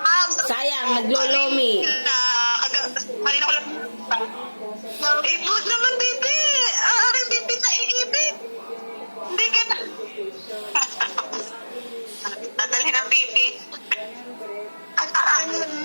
Sayang, naglolomi. Kanina ko lang. Ibot naman, baby. Aring baby na iibig. Hindi ka na. Nadalhin ang baby.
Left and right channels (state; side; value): inverted; both; correlation -1.00